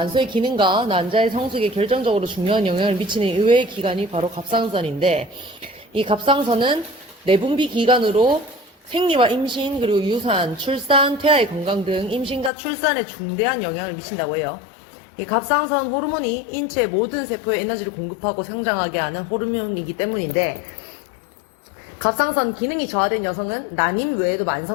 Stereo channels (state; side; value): drops out; right; at 12.5 s